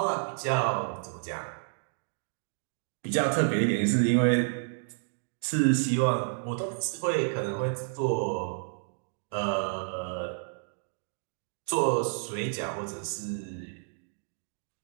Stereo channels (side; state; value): left; silent; digital silence